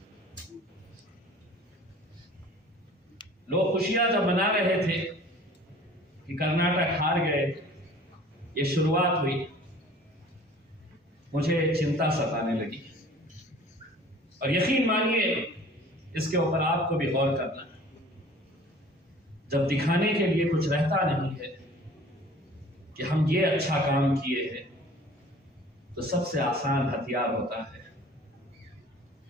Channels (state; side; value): normal; both; correlation 0.47